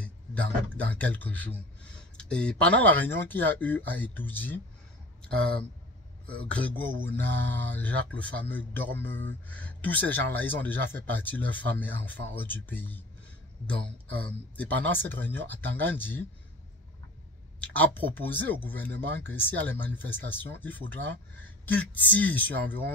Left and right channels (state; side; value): normal; both; correlation 0.39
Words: dans quelques jours. Et pendant la réunion qu'il y a eu à Itoudi, Grégoire Ouna, Jacques le fameux Dormeux, tous ces gens-là, ils ont déjà fait partie de leurs femmes et enfants hors du pays. Donc, et pendant cette réunion, Tangandi a proposé au gouvernement que s'il y a les manifestations, il faudra qu'il tire sur